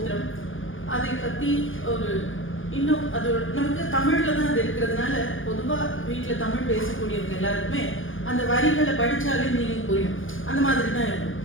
அதை பற்றி ஒரு இன்னும் அது நமக்கு தமிழில் தான் அது இருக்கிறதுனால பொதுவாக வீட்டில் தமிழ் பேசக்கூடியவங்க எல்லாருக்குமே அந்த வரிகளை படித்தாலே மீனிங் புரியும், அந்த மாதிரி தான் இருக்கும்.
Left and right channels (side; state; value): right; late; 0.58 ms